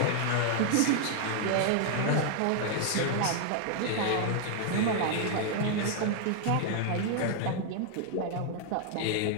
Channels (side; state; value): both; different; correlation 0.00